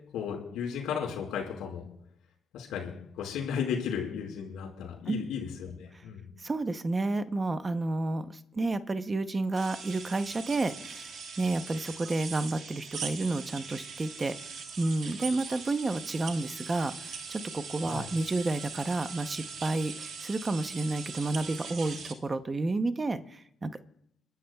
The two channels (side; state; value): both; normal; correlation 0.88